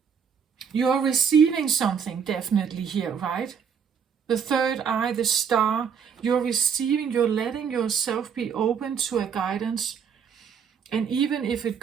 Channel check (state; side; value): quieter; left; 7.0 dB